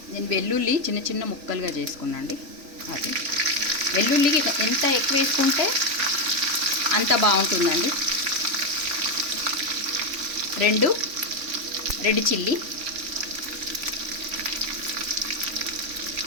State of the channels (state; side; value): late; left; 3.4 ms